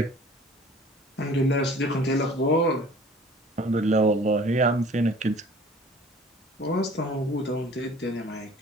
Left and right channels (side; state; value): both; normal; correlation 0.48